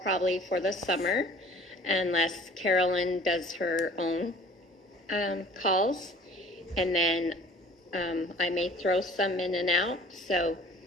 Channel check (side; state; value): both; normal; correlation 0.49